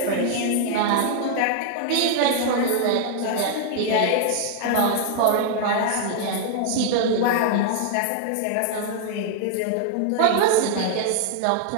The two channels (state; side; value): different; both; correlation 0.00